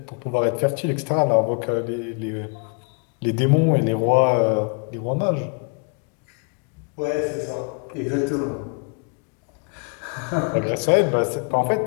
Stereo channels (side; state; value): right; quieter; 37.6 dB